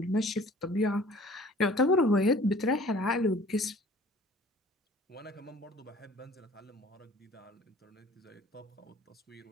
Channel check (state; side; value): normal; both; correlation 0.50